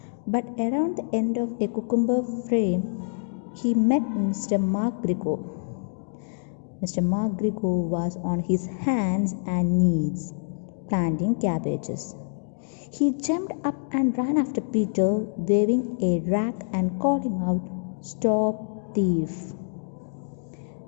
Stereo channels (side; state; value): right; silent; digital silence